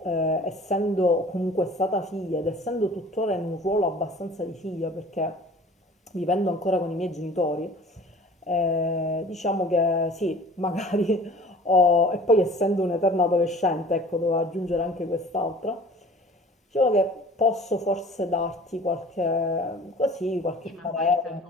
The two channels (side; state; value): both; normal; correlation 0.46